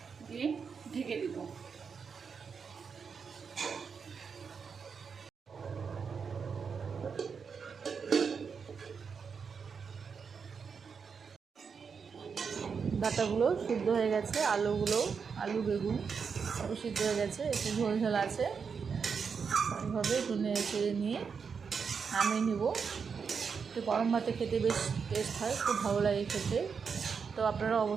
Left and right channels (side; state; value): left; quieter; 5.9 dB